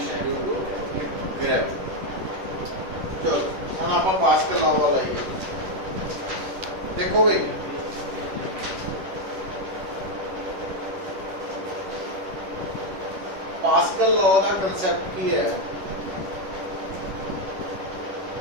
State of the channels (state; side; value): late; left; 11 ms